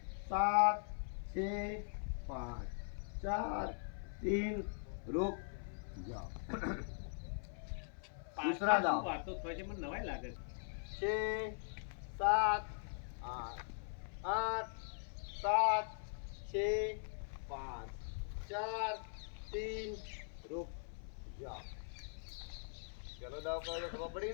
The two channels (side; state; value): right; silent; 50 dB below the other